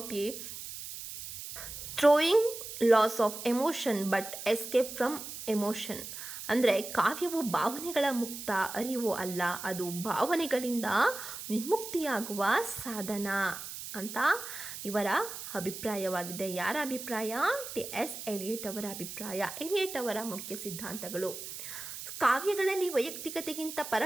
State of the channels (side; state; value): right; noise; hiss, 9 dB below the sound